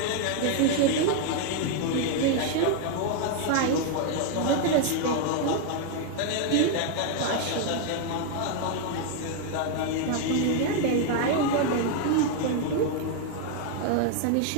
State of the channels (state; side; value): different; both; correlation 0.00